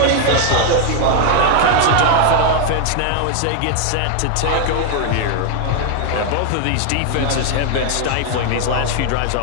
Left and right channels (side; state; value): both; different; correlation 0.00